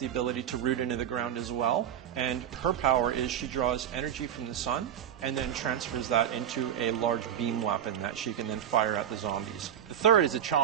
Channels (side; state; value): left; quieter; 9.8 dB